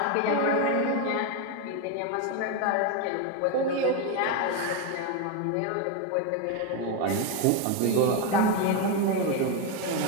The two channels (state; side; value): different; both; correlation 0.02